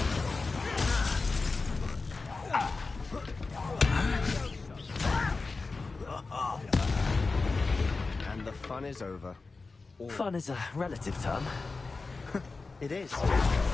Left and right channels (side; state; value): right; quieter; 3.9 dB